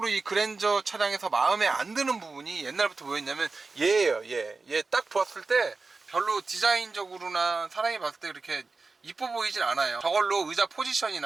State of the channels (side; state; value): left; quieter; 4.0 dB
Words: 이 그랜저 차량에서 마음에 안 드는 부분이 옛날부터 뭐였냐면 얘예요. 얘 딱 보았을 때 별로 디자인적으로나 사람이 봤을 때 그렇게 이뻐 보이진 않아요. 저걸로 의자